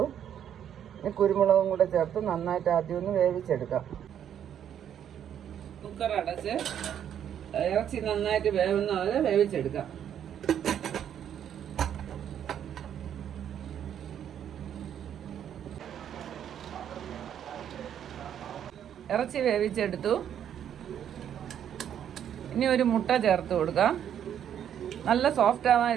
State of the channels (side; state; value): left; quieter; 9.6 dB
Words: ഇനി കുരുമുളകും കൂടെ ചേർത്ത് നന്നായിട്ട് ആദ്യം ഒന്ന് വേവിച്ചെടുക്കാം. കുക്കർ അടച്ച് ഇറച്ചി നന്നായിട്ട് വേവുന്ന പോലെ വേവിച്ചെടുക്കാം. ഇറച്ചി വേവിച്ചെടുത്തു. ഇനി ഒരു മുട്ട ചേർത്ത് കൊടുക്കാം. നല്ല സോഫ്റ്റ് ആവാൻ